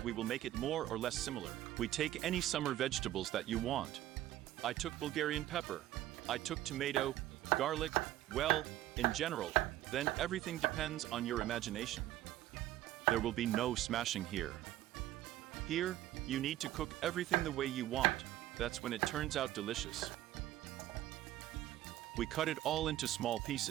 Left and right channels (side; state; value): left; quieter; 14.1 dB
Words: we will make it more or less similar. We take any summer vegetables that you want. I took Bulgarian pepper. I took tomato, garlic, well, in general, then everything depends on your imagination. There will be no smashing here. Here, you need to cook everything the way you want. That's when it turns out delicious. We cut it all into small